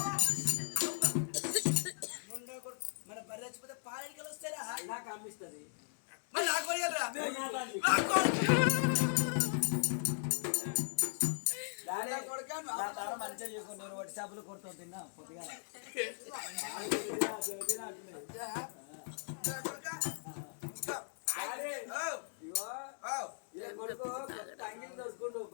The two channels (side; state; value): right; silent; digital silence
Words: మన బర్రె చచ్చిపోతే పాలెడికలు వస్తారా? నాకు అమ్మిస్తుంది మరి నాకు కొనియాలిరా? డాడీ కొడుకా నువ్వు నా తార మంచిగా చేసుకుని నేను వట్టి చేపలు కొడుతూ తిన్నా కొద్దిగా కొడుకు కొత్త అంగిలి దొరుకుండు